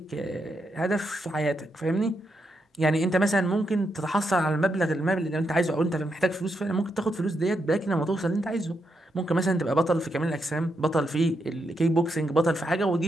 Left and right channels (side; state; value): both; normal; correlation 0.82